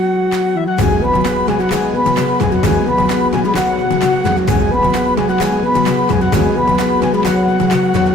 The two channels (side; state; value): both; normal; correlation 0.65